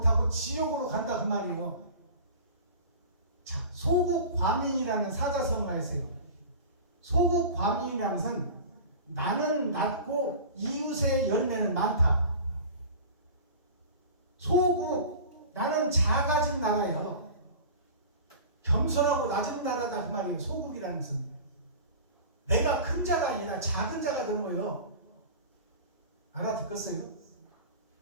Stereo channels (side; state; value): both; inverted; correlation -0.37